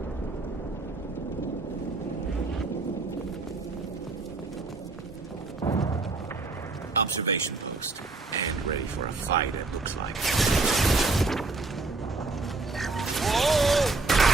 Observation post. And ready for a fight, it looks like.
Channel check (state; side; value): quieter; left; 3.6 dB